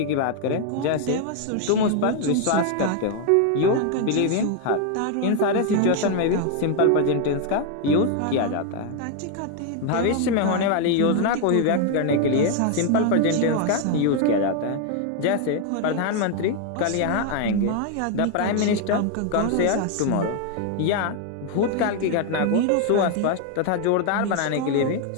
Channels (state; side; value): different; both; correlation 0.00